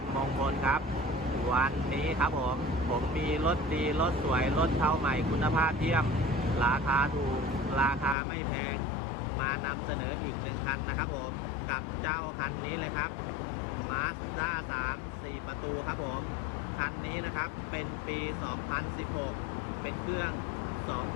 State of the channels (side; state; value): right; drops out; at 8.2 s